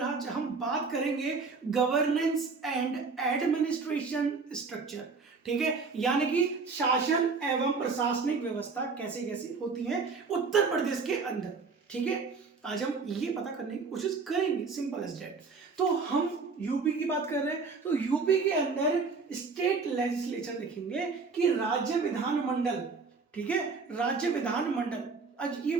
आज हम बात करेंगे गवर्नेंस एंड एडमिनिस्ट्रेशन स्ट्रक्चर। ठीक है, यानी कि शासन एवं प्रशासनिक व्यवस्था कैसे कैसे होती है उत्तर प्रदेश के अंदर। ठीक है, आज हम ये पता करने की कोशिश करेंगे, सिंपल एज दैट। तो हम यूपी की बात कर रहे हैं, तो यूपी के अंदर स्टेट लेजिस्लेचर देखेंगे कि राज्य विधानमंडल। ठीक है, राज्य विधानमंडल। आज ये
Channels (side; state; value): left; quieter; 4.6 dB